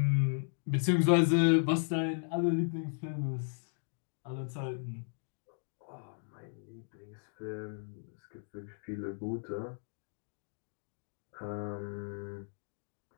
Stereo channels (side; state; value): right; silent; digital silence